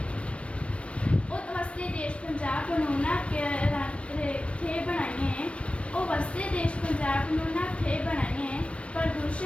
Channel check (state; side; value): late; right; 0.061 ms